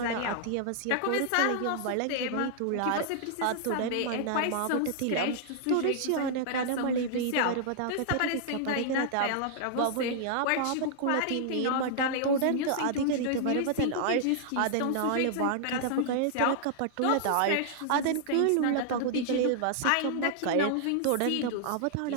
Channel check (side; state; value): both; different; correlation -0.01